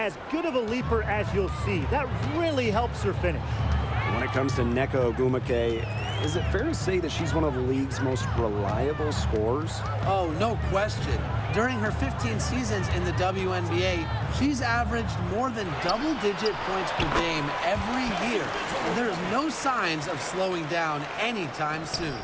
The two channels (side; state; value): both; identical; correlation 1.00